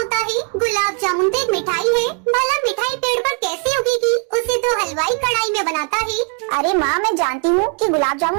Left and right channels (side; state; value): left; quieter; 37.2 dB